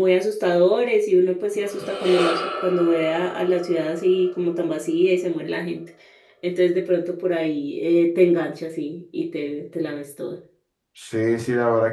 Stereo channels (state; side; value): identical; both; correlation 1.00